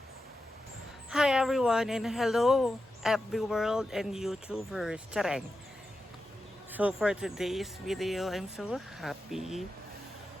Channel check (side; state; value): both; normal; correlation 0.90